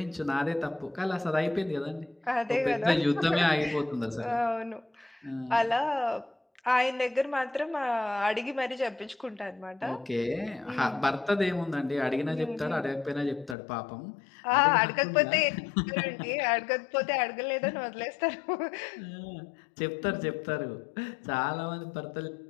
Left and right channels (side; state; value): right; drops out; at 13.6 s